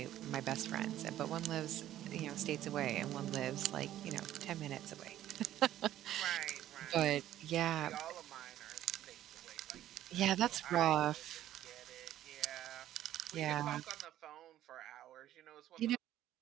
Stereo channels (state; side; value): quieter; left; 12.8 dB